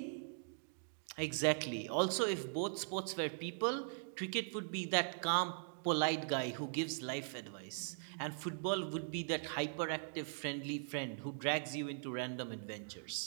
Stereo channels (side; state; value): left; silent; digital silence